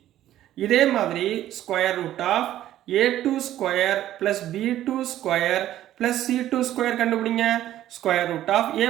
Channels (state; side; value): quieter; left; 12.9 dB